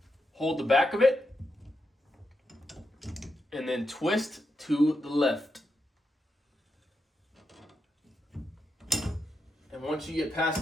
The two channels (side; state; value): both; normal; correlation 0.85